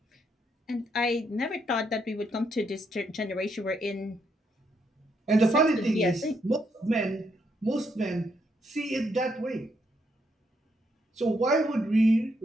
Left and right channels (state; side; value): normal; both; correlation 0.76